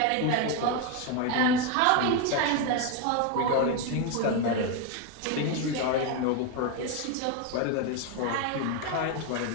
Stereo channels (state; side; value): different; both; correlation 0.02